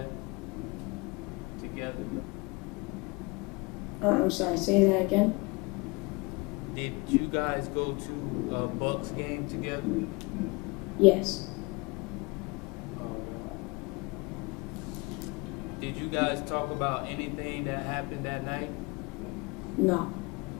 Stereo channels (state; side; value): quieter; right; 27.1 dB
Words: together? I'm sorry, say that again? Did you guys go to a Bucks game together? Yes. Did you guys talk about anything that happened that night? No.